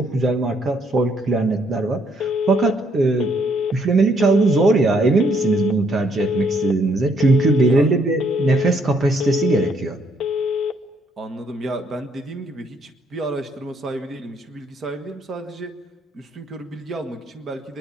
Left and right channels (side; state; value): both; normal; correlation 0.70